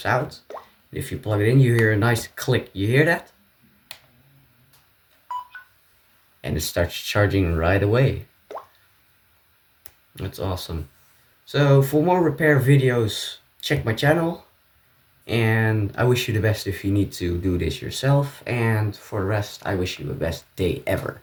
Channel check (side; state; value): both; identical; correlation 1.00